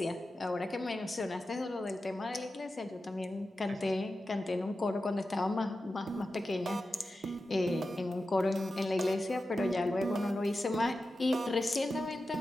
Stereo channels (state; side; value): normal; both; correlation 0.92